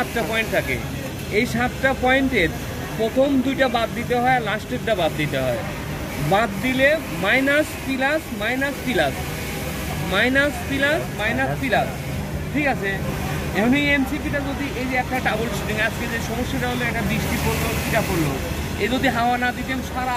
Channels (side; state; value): both; identical; correlation 1.00